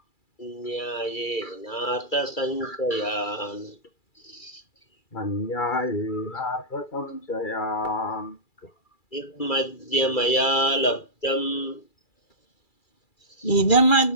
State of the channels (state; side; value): late; right; 2.3 ms